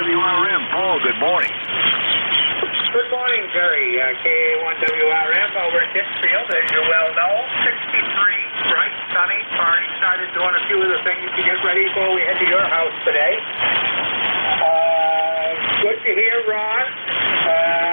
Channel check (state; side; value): inverted; both; correlation -1.00